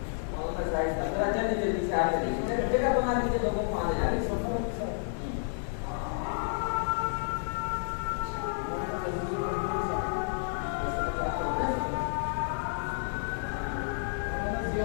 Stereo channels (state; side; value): silent; right; digital silence